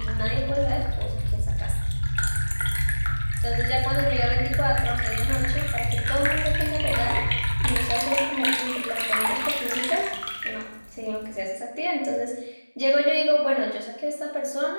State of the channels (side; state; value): both; inverted; correlation -1.00